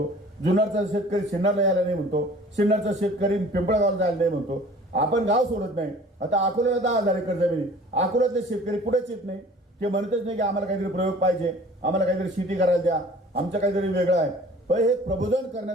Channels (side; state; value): both; normal; correlation 0.48